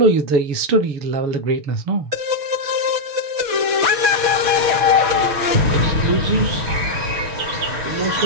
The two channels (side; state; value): left; late; 6.7 ms